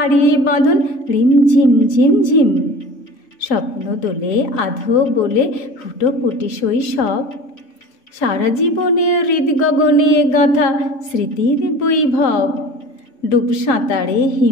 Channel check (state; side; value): late; right; 3.8 ms